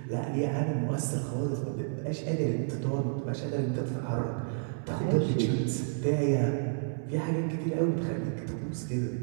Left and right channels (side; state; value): left; silent; 57 dB below the other